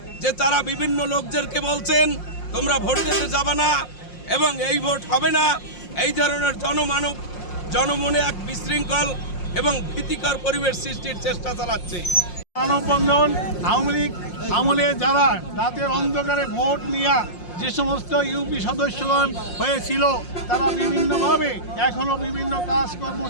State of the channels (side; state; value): right; late; 5.6 ms